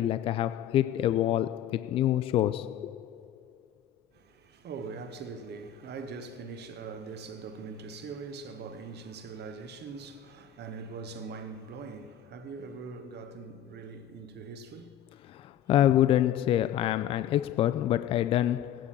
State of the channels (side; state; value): right; quieter; 10.2 dB